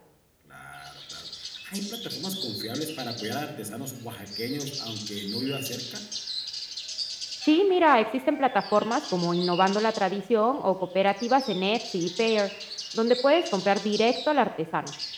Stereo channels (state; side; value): identical; both; correlation 1.00